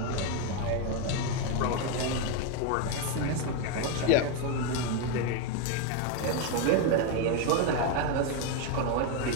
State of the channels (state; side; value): different; both; correlation 0.02